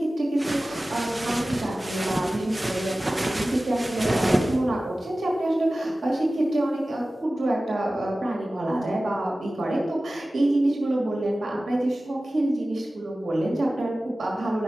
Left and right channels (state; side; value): normal; both; correlation 0.96